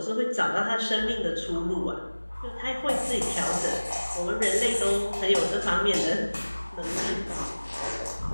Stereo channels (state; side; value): inverted; both; correlation -1.00